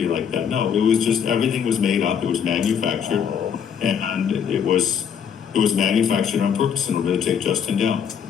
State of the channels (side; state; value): right; quieter; 7.8 dB